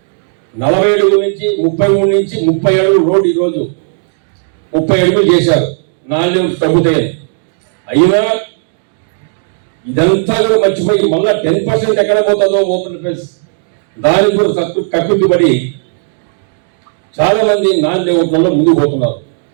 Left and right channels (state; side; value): silent; left; digital silence